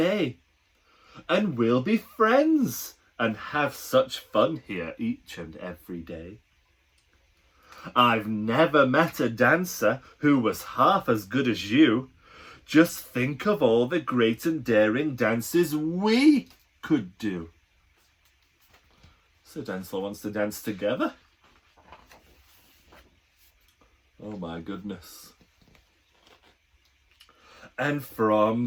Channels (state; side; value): identical; both; correlation 1.00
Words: and we'll be friends and have such fun here each and every day. I've never met a dancer who was half as good as you. Just think of all the great and daring dances we could do. So Dancealot wants to dance together. Oh my goodness. And from